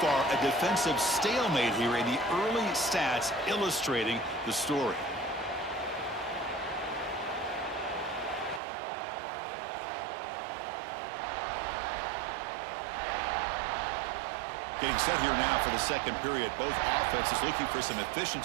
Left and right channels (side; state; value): left; drops out; at 8.6 s